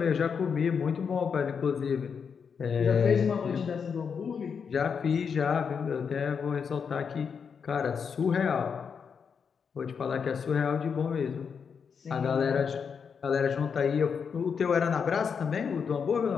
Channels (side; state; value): right; quieter; 6.4 dB